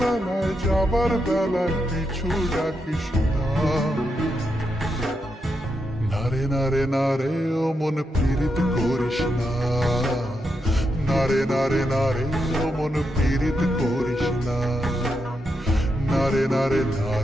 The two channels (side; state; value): both; normal; correlation 0.84